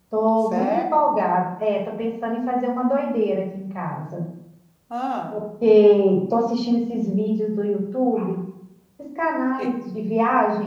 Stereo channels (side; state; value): both; identical; correlation 1.00